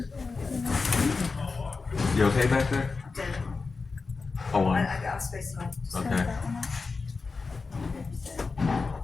You okay back there? Dead. Hold on. I got space now. Just Okay. turn that one up.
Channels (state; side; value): quieter; right; 4.3 dB